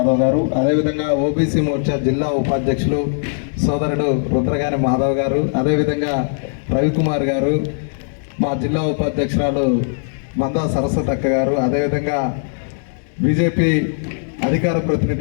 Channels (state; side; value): silent; right; digital silence